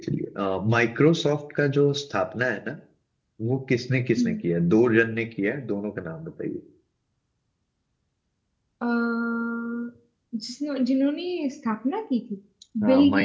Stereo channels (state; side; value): identical; both; correlation 1.00